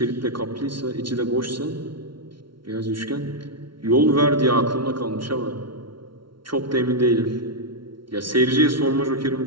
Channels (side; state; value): left; late; 0.74 ms